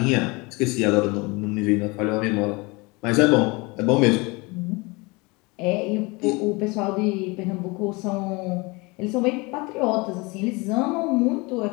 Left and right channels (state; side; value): quieter; right; 26.1 dB